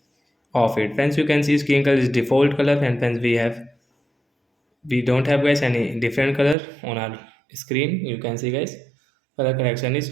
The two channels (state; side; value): drops out; left; at 6.6 s